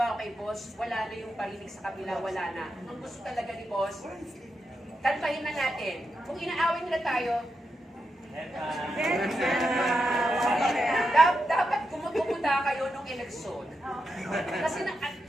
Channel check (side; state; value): both; normal; correlation 0.86